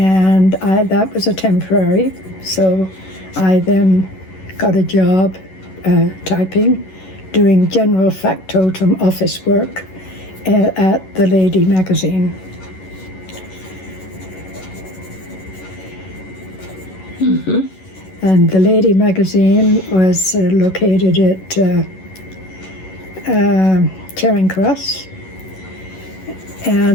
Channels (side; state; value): right; late; 11 ms